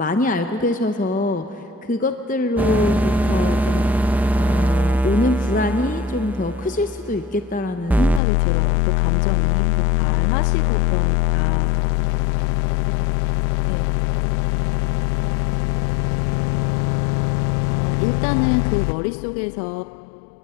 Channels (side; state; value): right; drops out; at 8.2 s